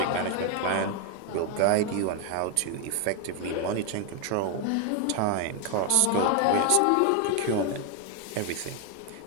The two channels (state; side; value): different; both; correlation 0.01